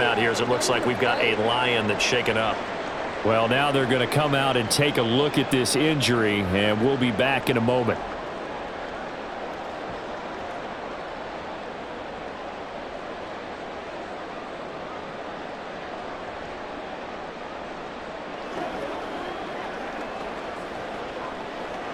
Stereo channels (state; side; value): identical; both; correlation 1.00